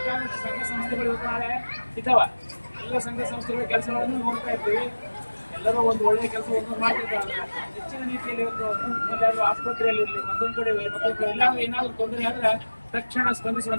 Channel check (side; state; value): both; inverted; correlation -1.00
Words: ಸಂಘ ಸಂಸ್ಥೆಗಳು ಇವತ್ತು ನಾಳೆ ಇದ್ದಾವ. ಎಲ್ಲ ಸಂಘ ಸಂಸ್ಥೆಗಳ ಕೆಲಸಗಳನ್ನು ನೋಡ್ತಾ ಇರ್ತೀವಿ. ಎಲ್ಲರೂ ಒಂದು ಒಳ್ಳೆಯ ಕೆಲಸ ಒಂದು ಮಾಡ್ತಿರ್ತಾರೆ. ಹೆಚ್ಚಿನ ರೀತಿಯಲ್ಲಿ ಇವತ್ತು ಎಲ್ಲಾದರೂ ಆಸ್ಪತ್ರೆಯಲ್ಲಿರಲಿ ಮತ್ತೊಂದು ಕಡೆ ಎಲ್ಲಾದ್ರೂ ಏನಾದರೂ ತೊಂದರೆ ಆದ್ರೆ ತಕ್ಷಣ